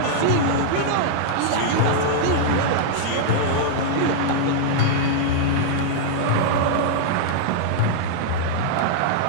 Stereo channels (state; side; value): different; both; correlation -0.01